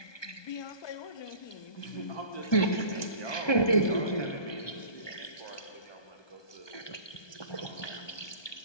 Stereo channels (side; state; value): right; late; 1.2 ms